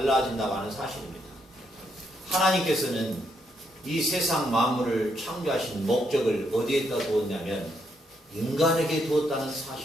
하는 사실입니다. 하나님께서는 이 세상 만물을 창조하신 목적을 어디에다 두었냐면 인간에게 두었다는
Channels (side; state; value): both; normal; correlation 0.76